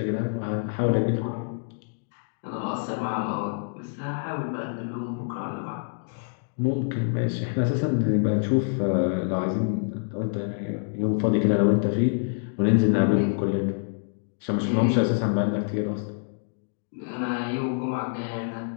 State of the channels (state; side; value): silent; right; digital silence